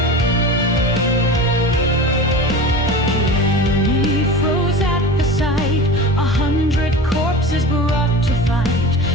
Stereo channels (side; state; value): both; normal; correlation 0.32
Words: The enemy froze at the sight. 100 corpses brought to fight.